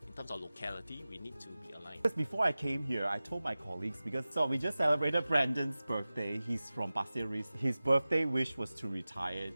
in terms of locality, we need to be aligned. Because before I came here, I told my colleagues, because we just celebrated Brandon's birthday. He's from Pasir Ris. His birthday wish was to retire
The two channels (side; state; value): both; inverted; correlation -0.97